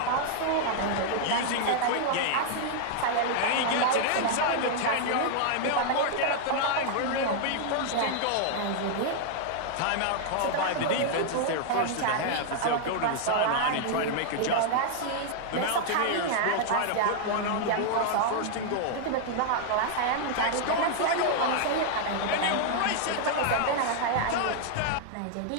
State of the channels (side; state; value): both; different; correlation 0.00